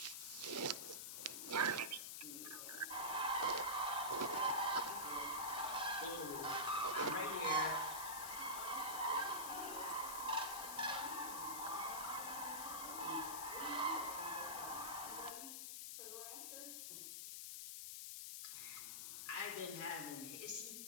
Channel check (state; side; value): noise; left; hiss, 5 dB below the sound